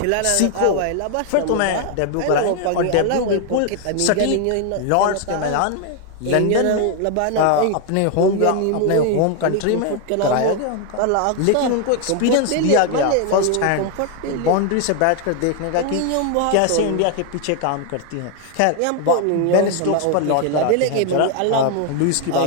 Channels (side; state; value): both; different; correlation 0.00